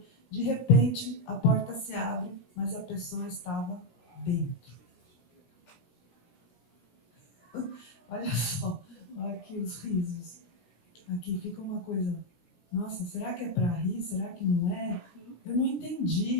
De repente, a porta se abre, mas a pessoa estava dentro. Olha só, olha aqui os risos. Aqui fica uma coisa, nossa, será que é para rir? Será que não é? Eu não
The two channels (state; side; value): late; right; 17 ms